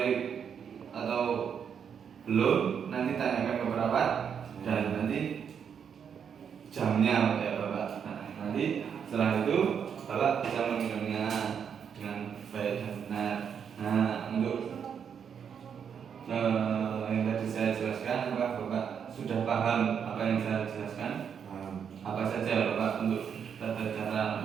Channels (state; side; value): quieter; left; 7.5 dB